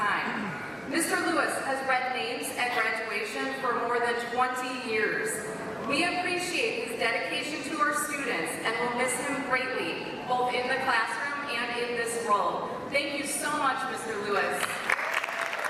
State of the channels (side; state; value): both; identical; correlation 1.00